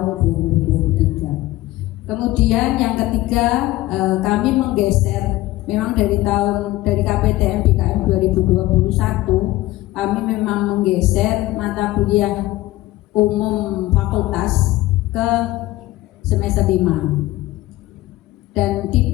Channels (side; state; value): right; quieter; 17.4 dB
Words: 2023. Kemudian yang ketiga, kami menggeser, memang dari KPTM BKM 2021 kami memang menggeser mata kuliah umum fakultas ke semester 5 dan